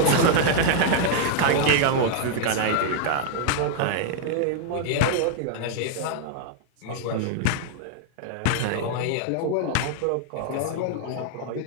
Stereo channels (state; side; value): different; both; correlation -0.01